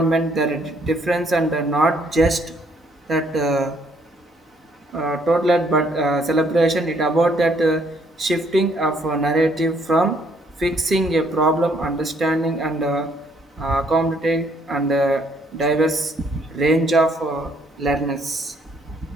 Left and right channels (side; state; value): both; normal; correlation 0.67